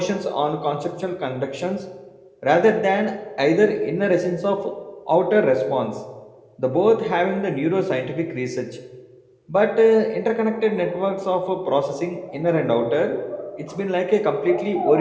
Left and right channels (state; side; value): identical; both; correlation 1.00